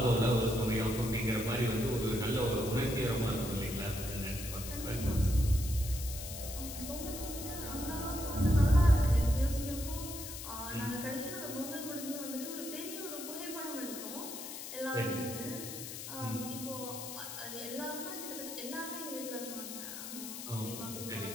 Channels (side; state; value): left; noise; hiss, 9 dB below the sound